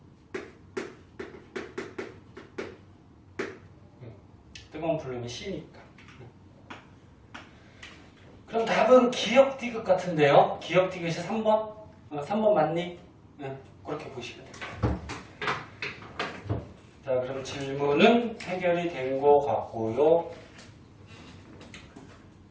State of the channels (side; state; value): both; identical; correlation 1.00